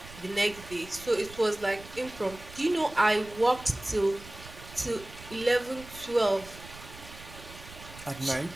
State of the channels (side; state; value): right; noise; rumble, 17 dB below the sound